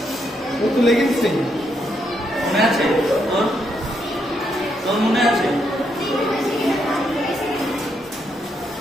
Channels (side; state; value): both; normal; correlation 0.78